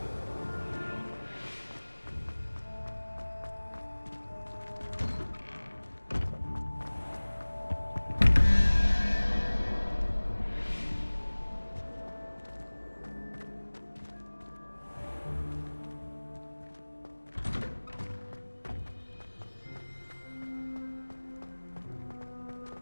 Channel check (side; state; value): both; inverted; correlation -1.00